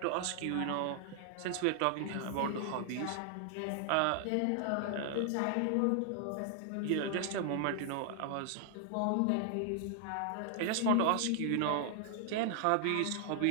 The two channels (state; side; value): different; both; correlation 0.00